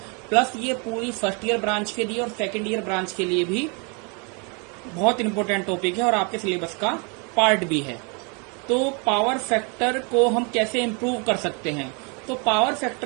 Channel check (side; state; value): left; quieter; 34.2 dB